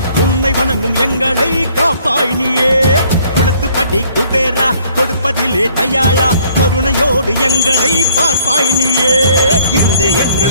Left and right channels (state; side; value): inverted; both; correlation -0.60